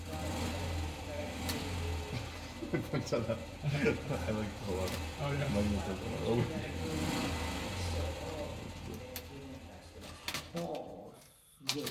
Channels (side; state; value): both; identical; correlation 1.00